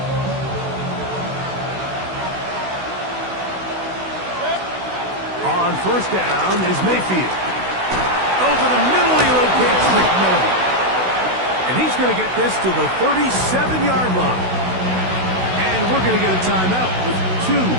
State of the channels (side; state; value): left; late; 16 ms